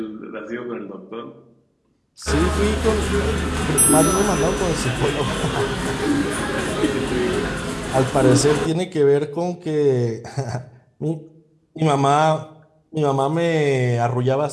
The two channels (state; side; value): identical; both; correlation 1.00